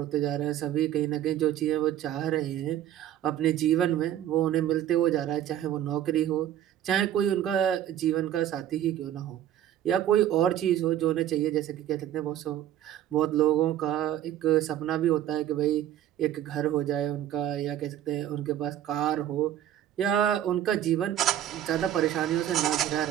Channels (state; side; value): quieter; left; 11.5 dB